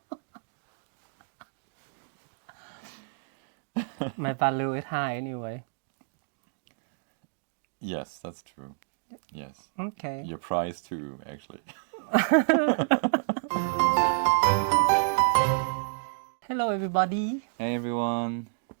My value is high anyway. Yes, that's true. Yes, Okay. your price too, actually. Hello, everybody. Hey everyone.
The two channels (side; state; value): left; silent; digital silence